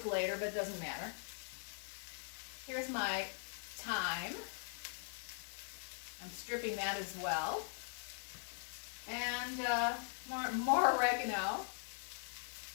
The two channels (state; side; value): silent; right; 50 dB below the other